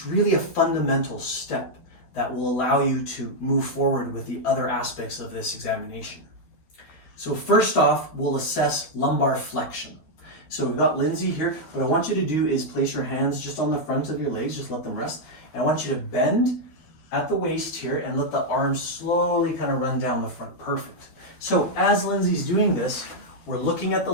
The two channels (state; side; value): late; right; 12 ms